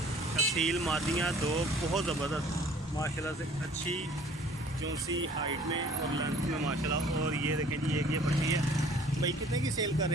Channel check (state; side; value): normal; both; correlation 0.53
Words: असील मादियाँ दो बहुत ज़बरदस्त माशाल्लाह से, अच्छी चौंसी हाइट में और लेंथ में माशाल्लाह। और ये देखें जी एक ये पट्टी है भाई। कितने की सेल कर